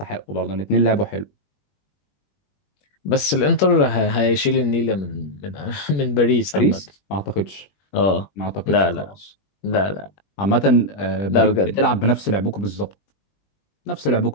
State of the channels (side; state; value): right; late; 21 ms